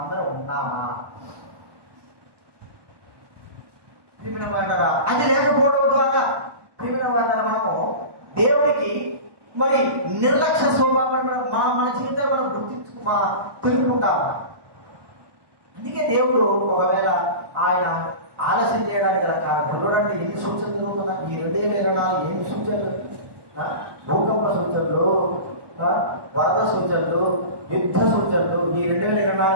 ఉన్నామా? అది లేకపోవడం ద్వారా మనము దేవుడికి మరి నిర్లక్ష్య స్వభావం మన జీవితాన్ని మనం తెలుపుకుంటాము. అందుకే దేవుడు ఒకవేళ ఆయన ఆలస్యం చేయడానికి గల కారణం చూడండి, ఎన్ని సూచనలు జరుగుతున్నా ఈ 2024 ఎన్ని సూచనలు, భూకంప సూచనలు, వరద సూచనలు, యుద్ధ సూచనలు. ఈ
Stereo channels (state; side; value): late; left; 1.2 ms